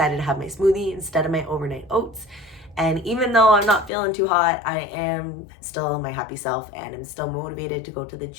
to have my smoothie instead of my overnight oats. And even though I'm not feeling too hot, I am still my happy self and I'm still motivated to go to the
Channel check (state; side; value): drops out; right; at 3.9 s